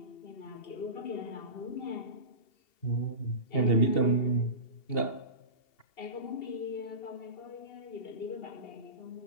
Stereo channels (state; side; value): late; right; 2.8 ms